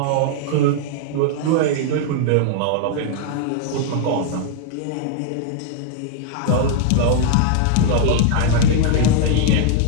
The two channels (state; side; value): different; both; correlation -0.01